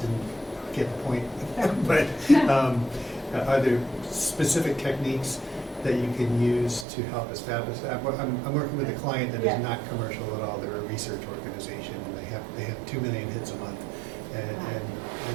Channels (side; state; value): left; drops out; at 6.9 s